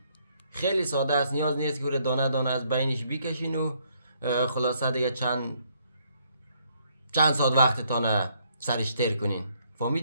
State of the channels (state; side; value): inverted; both; correlation -0.70